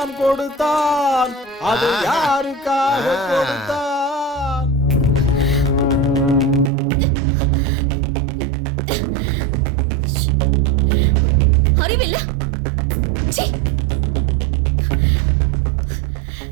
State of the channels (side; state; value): left; drops out; at 6.7 s